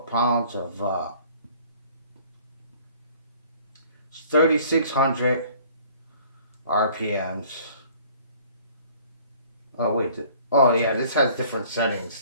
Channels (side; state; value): both; inverted; correlation -0.54